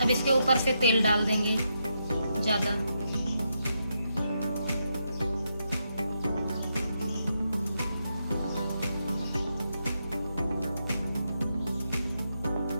इसके ऊपर से तेल डाल देंगे ज्यादा।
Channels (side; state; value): both; inverted; correlation -0.82